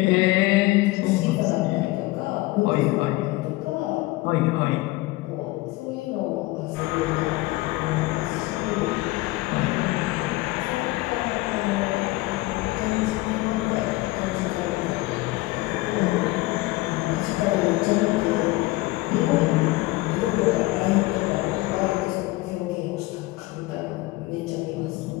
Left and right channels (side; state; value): right; quieter; 20.2 dB